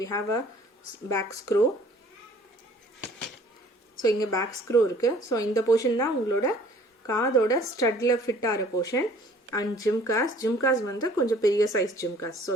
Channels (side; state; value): both; normal; correlation 0.53